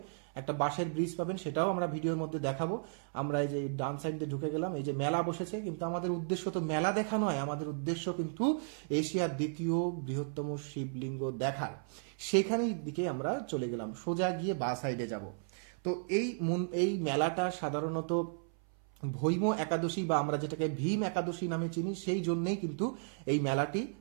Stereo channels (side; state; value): left; silent; 55 dB below the other